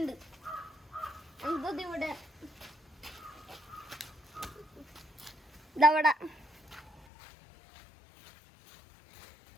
എന്തത് ഇവിടെ ഇതവിടെ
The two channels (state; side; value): drops out; right; at 7.1 s